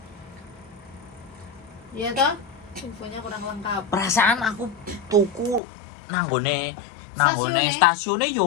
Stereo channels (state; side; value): drops out; right; at 5.6 s